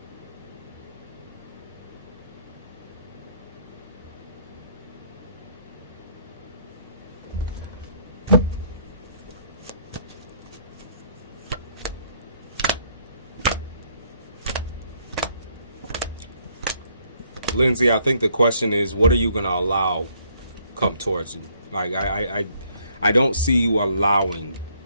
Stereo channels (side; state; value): both; inverted; correlation -0.67